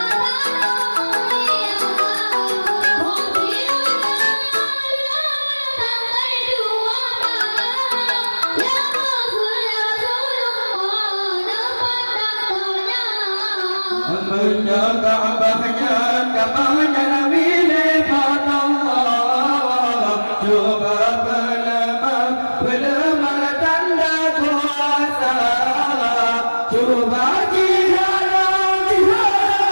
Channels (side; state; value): both; inverted; correlation -1.00